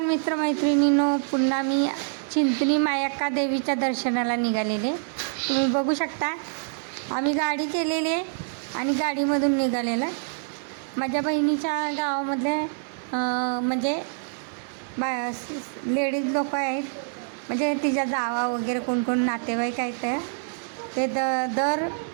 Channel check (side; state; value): left; silent; digital silence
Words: मित्रमैत्रिणींनो, पुन्हा मी चिंचणी मायक्का देवीच्या दर्शनाला निघालेले. तुम्ही बघू शकता आम्ही गाडी केलेली आहे आणि गाडीमधून निघालेलं. माझ्या बहिणीच्या गावामधले म्हणजे लेडीज लोक आहेत, म्हणजे तिच्या जावा वगैरे कोण कोण नातेवाईक आहेत ते दर